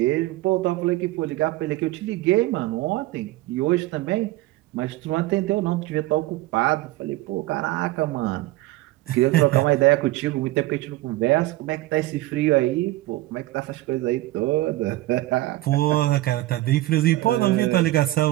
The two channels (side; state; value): left; quieter; 17.8 dB